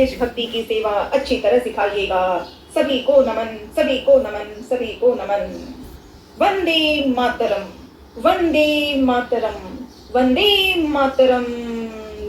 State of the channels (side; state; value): both; identical; correlation 1.00